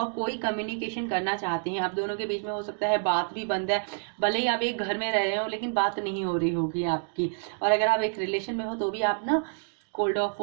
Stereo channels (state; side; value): silent; left; digital silence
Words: कोई कम्युनिकेशन करना चाहते हैं। आप दोनों के बीच में हो सकता है बात भी बंद है, भले ही आप एक घर में रह रहे हो लेकिन बात नहीं हो रही होगी आपकी। और अगर आप एक रिलेशन में हो तो भी आप ना कोल्ड ऑफ